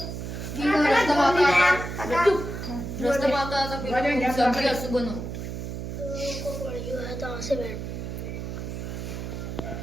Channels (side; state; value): right; noise; hum, 6 dB below the sound